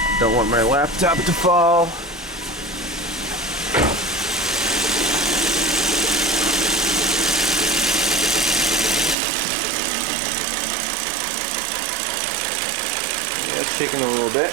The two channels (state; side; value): drops out; left; at 9.2 s